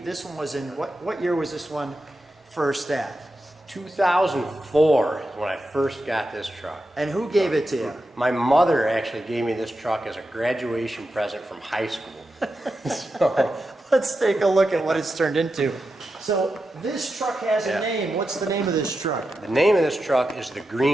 this one was in, what year was this one first at? 2004 is when I first got this truck. And who gave it to you? My mother actually gave me this truck as a graduation present from high school. So, let's take a look at what it's turned into. So this truck has a name. What's the name of this truck? The name of this truck is the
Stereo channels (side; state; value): both; normal; correlation 0.89